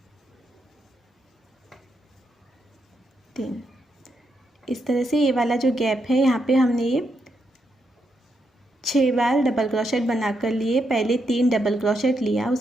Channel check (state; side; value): normal; both; correlation 0.81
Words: 3। इस तरह से ये वाला जो गैप है यहाँ पे हमने ये 6 बार डबल क्रोशेट बना कर लिए। पहले 3 डबल क्रोशेट लिया,